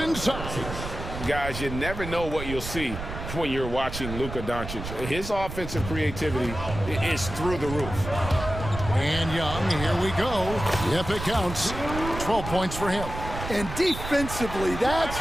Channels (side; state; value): right; noise; rumble, 8 dB below the sound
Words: Guys, you never know what you'll see when you're watching Luka Doncic. His offensive creativity is through the roof. And Young, here we go. Yep, it counts. 12 points for him. And defensively, that's